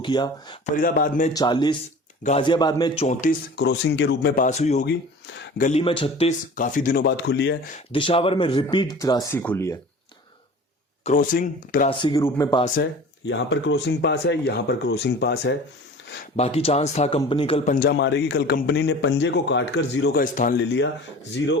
किया। फरीदाबाद में 40, गाजियाबाद में 34 क्रॉसिंग के रूप में पास हुई होगी। गली में 36 काफी दिनों बाद खुली है। दिशावर में रिपीट 83 खुली है। क्रॉसिंग 83 के रूप में पास है। यहां पर क्रॉसिंग पास है, यहां पर क्रॉसिंग पास है। बाकी चांस था कंपनी कल पंजा मारेगी। कल कंपनी ने पंजे को काटकर जीरो का स्थान ले लिया। जीरो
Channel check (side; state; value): both; normal; correlation 0.41